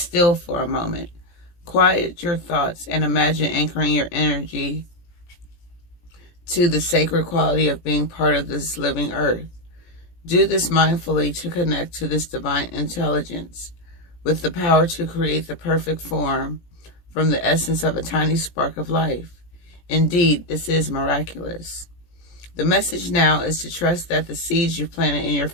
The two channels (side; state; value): right; late; 17 ms